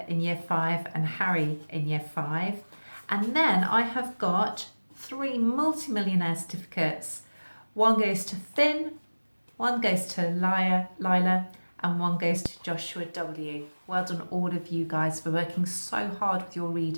in year 5 and Harry in year 5. And then I have got 3 multi-millionaire certificates. One goes to Finn, one goes to Lila, and one goes to Joshua W. Well done all of you guys for working so hard with your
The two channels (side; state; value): both; inverted; correlation -1.00